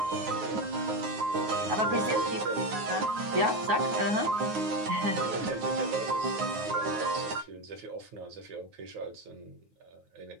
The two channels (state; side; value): late; left; 9.6 ms